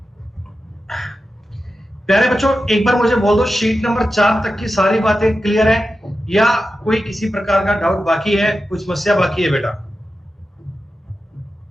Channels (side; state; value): both; normal; correlation 0.91